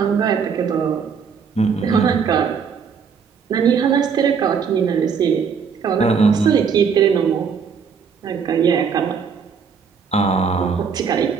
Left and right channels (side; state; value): left; quieter; 6.3 dB